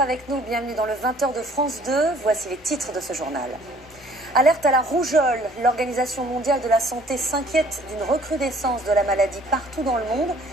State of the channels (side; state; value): both; normal; correlation 0.56